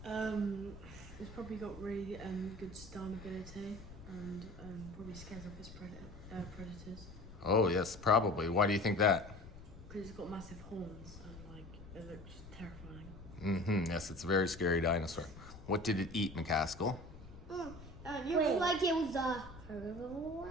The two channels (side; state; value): left; noise; rumble, 16 dB below the sound